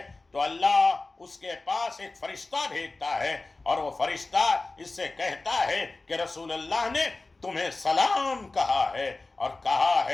تو اللہ اس کے پاس ایک فرشتہ بھیجتا ہے، اور وہ فرشتہ اس سے کہتا ہے کہ رسول اللہ نے تمہیں سلام کہا ہے اور کہا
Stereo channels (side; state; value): right; quieter; 3.3 dB